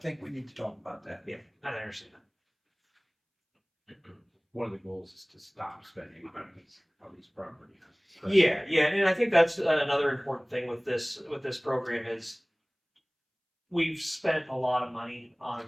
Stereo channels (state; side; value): identical; both; correlation 1.00